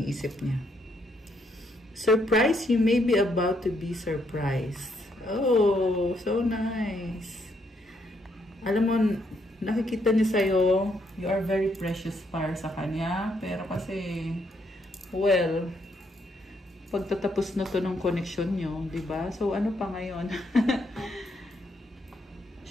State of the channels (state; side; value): normal; both; correlation 0.74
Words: niya. Surprise, you may be about to be surprised. Oh, so nice. Alam mo, nakikita niya sa'yo, you are very precious para sa kanya. Pero kasi, well, pagtatapos na to ng connection nyo, diba? So, ano pa ngayon?